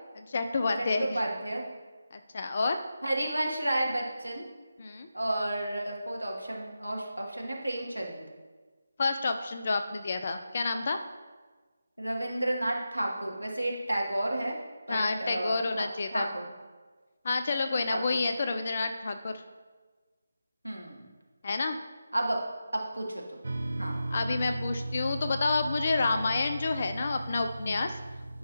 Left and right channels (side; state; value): both; inverted; correlation -0.91